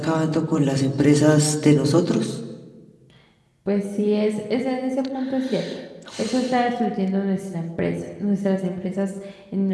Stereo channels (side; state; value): both; identical; correlation 1.00